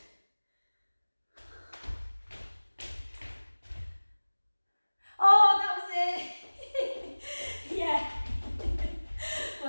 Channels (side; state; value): both; inverted; correlation -1.00